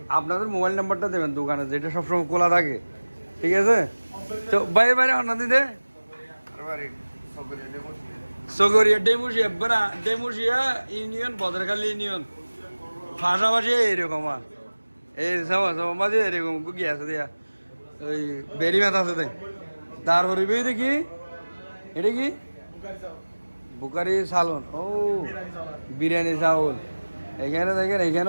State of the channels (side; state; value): both; inverted; correlation -1.00